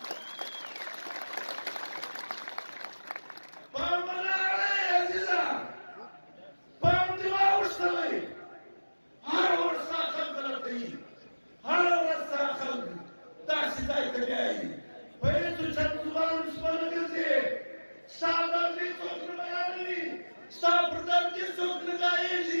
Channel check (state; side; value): inverted; both; correlation -1.00